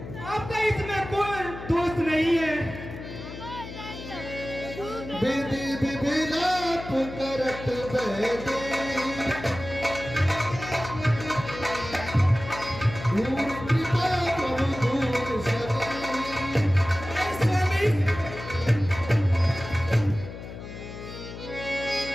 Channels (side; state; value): left; noise; hum, 11 dB below the sound